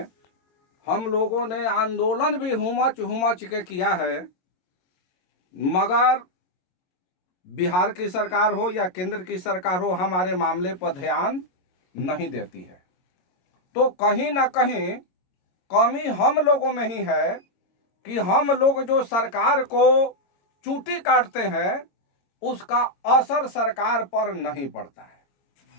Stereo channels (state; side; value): late; right; 22 ms